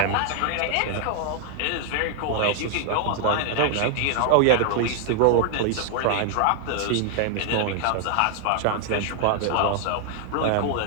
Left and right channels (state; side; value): different; both; correlation 0.00